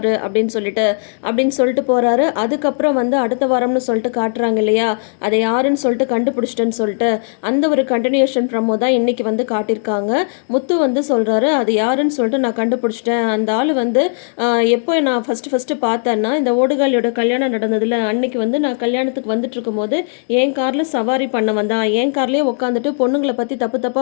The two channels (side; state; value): right; silent; digital silence